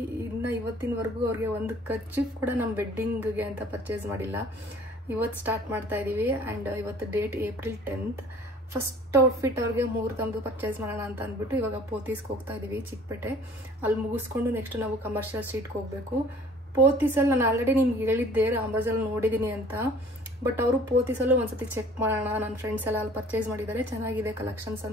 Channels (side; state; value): both; normal; correlation 0.51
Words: ಇನ್ನು ಇವತ್ತಿನವರೆಗೂ ಅವ್ರಿಗೆ ಒಂದು ಕರ್ಚೀಫ್ ಕೂಡ ನಮ್ಮ ವೆಡ್ಡಿಂಗಿಗೆ ಅಂತ ಪರ್ಚೇಸ್ ಮಾಡಿಲ್ಲ. ಇವತ್ತು ಸ್ಟಾರ್ಟ್ ಮಾಡ್ತಾ ಇದ್ದೀವಿ. ಆ್ಯಂಡ್ ಇವತ್ತು date April 10th. First outfit ಅವ್ರಿಗೆ ಮುಹೂರ್ತಂದು ಪರ್ಚೇಸ್ ಮಾಡೋಣ ಅಂತ ಅಂದ್ಬಿಟ್ಟು ಇವಾಗ ಪೋತೀಸ್ಗೆ ಹೋಗ್ತಾ ಇದ್ದೀವಿ, ಚಿಕ್ಕಪೇಟೆ. ಅಲ್ಲಿ ಮುಗಿಸ್ಕೊಂಡು ನೆಕ್ಸ್ಟ್ ನಾವು ಕಮರ್ಷಿಯಲ್ ಸ್ಟ್ರೀಟ್ಗೆ ಹೋಗಬೇಕು. ಪೋತೀಸಲ್ಲಿ ನಾನು ಆಲ್ರೆಡಿ ನಿಮ್ಗೆ ಹೇಳಿದ್ದೆ ರಾಮರಾಜಲ್ಲಿ ನೋಡಿದ್ದೀನಿ ಅಂತ. ಬಟ್ ಅವರು ಪೋತೀಸಲ್ಲೂ ಒಂದ್ಸತಿ ಚೆಕ್ ಮಾಡೋಣ, ನನ್ನ ಫ್ರೆಂಡ್ಸ್ ಎಲ್ಲ ಅಲ್ಲಿ ಪರ್ಚೇಸ್ ಮಾಡಿದ್ದಾರೆ, ಚೆನ್ನಾಗಿದೆ ಕಲೆಕ್ಷನ್ಸ್